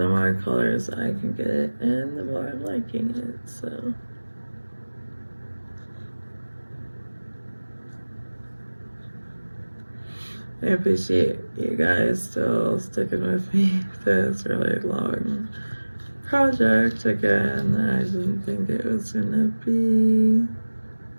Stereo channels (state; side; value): inverted; both; correlation -1.00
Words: more colors I can get in, the more I'm liking it, so. I appreciate you guys still sticking with me through this really long project. Again, I didn't think it was gonna be